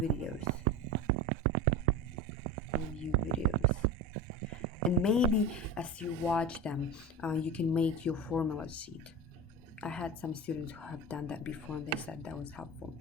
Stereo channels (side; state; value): both; normal; correlation 0.28